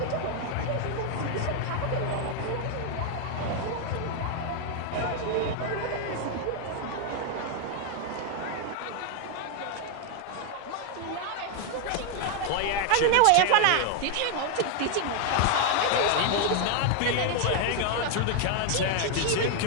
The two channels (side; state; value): both; different; correlation 0.00